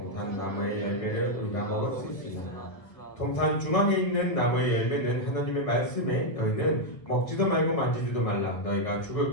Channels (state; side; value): late; right; 1.5 ms